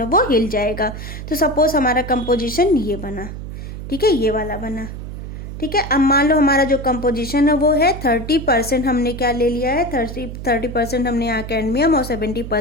है वो हिल जाएगा। तो सपोज हमारा कंपोजिशन ये बना, ठीक है, ये वाला बना। ठीक है, अब मान लो हमारा जो कंपोजिशन है वो है 30% हमने क्या ले लिया है, 30% हमने यहाँ कैडमियम और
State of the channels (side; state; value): right; noise; hum, 9 dB below the sound